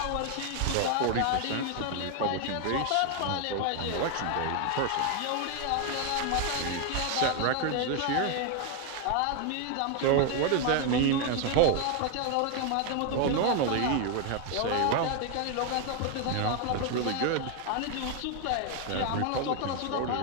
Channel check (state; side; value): different; both; correlation 0.01